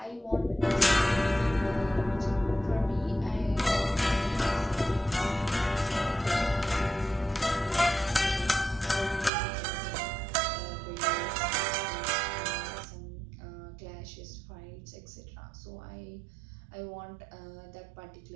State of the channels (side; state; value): left; drops out; at 9.3 s